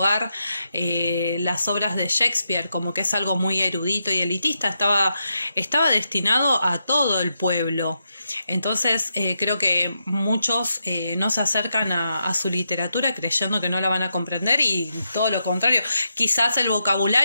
las obras de Shakespeare, como que es algo muy erudito y elitista. Estaba destinado a todo el pueblo. Entonces creo que muchos no se acercan a su literatura creyendo que no la van a comprender, y todo lo contrario. Quizás el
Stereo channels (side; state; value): both; inverted; correlation -0.84